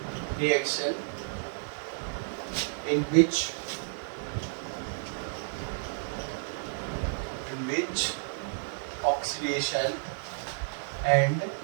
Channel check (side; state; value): left; silent; digital silence